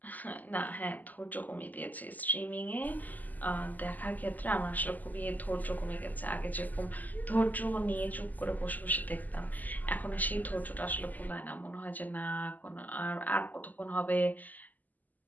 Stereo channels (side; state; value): right; late; 0.082 ms